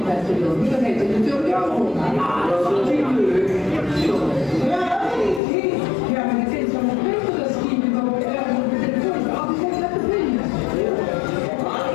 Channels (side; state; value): right; drops out; at 5.4 s